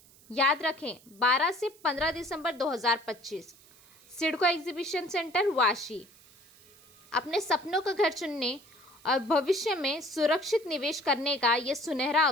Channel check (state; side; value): noise; right; hiss, 26 dB below the sound